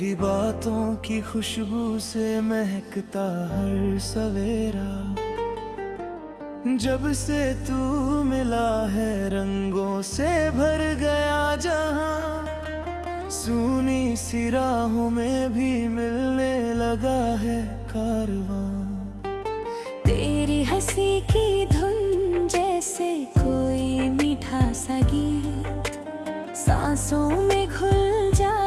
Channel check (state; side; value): identical; both; correlation 1.00